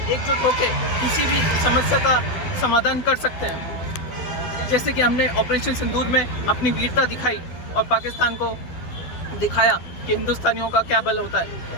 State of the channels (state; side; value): late; right; 12 ms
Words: एकजुट होकर किसी भी समस्या का समाधान कर सकते हैं। जैसे कि हमने ऑपरेशन सिंदूर में अपनी वीरता दिखाई और पाकिस्तान को दिखाया कि हिंदुस्तानियों का क्या बल होता है,